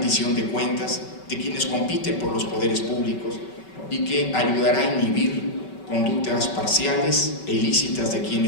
de cuentas de quienes compiten por los poderes públicos y que ayudará a inhibir conductas parciales e ilícitas de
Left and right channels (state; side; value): late; right; 5.3 ms